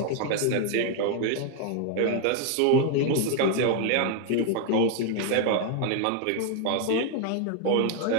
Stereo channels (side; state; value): both; different; correlation 0.01